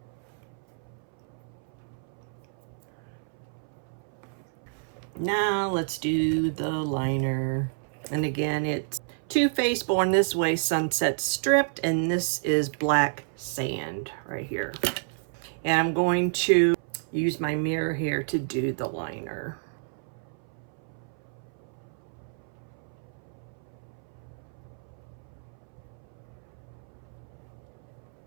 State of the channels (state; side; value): silent; left; 58 dB below the other